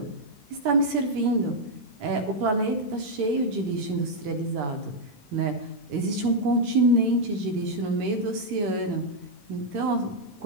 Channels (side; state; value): left; late; 14 ms